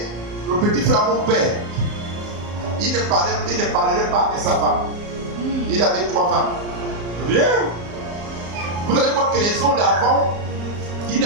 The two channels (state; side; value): late; left; 34 ms